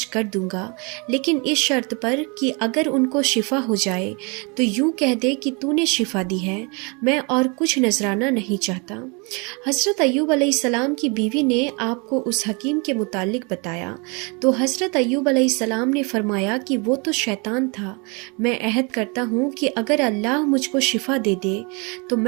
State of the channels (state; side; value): quieter; left; 31.4 dB